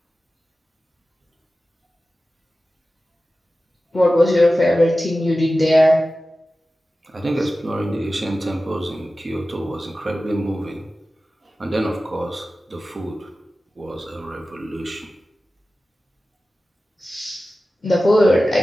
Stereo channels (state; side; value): normal; both; correlation 0.95